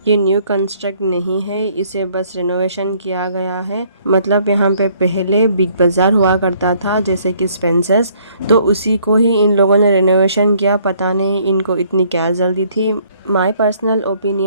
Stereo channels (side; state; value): both; inverted; correlation -0.63